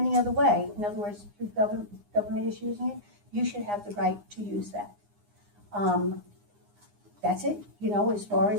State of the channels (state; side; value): late; left; 9.7 ms